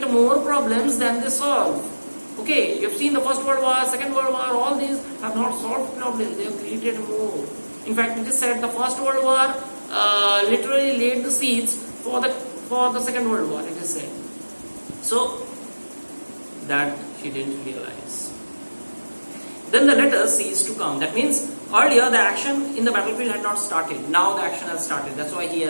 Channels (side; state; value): both; inverted; correlation -1.00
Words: more problems than they solve. Okay, you have seen the First World War, Second World War, all these have not solved problems, they have created more. In fact, it is said the First World War literally laid the seeds for the Second World War, it is said. So, that she didn't realize. Then the letters ceased to come. That means earlier the action in the battlefield had not started. Now the action has started. That's why he